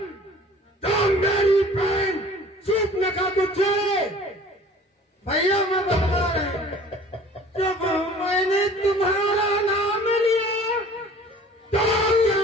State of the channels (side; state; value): both; normal; correlation 0.48